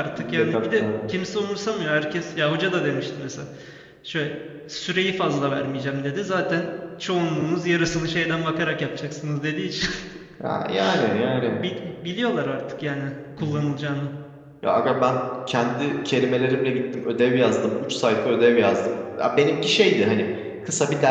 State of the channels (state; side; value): identical; both; correlation 1.00